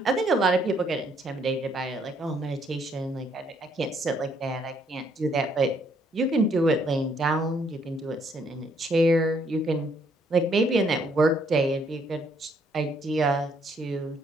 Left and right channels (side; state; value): both; normal; correlation 0.69